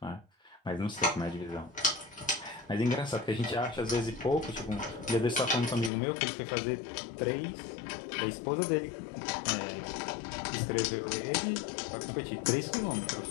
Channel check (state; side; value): drops out; right; at 5.9 s